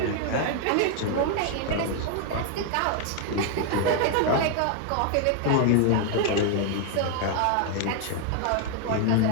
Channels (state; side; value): different; both; correlation 0.00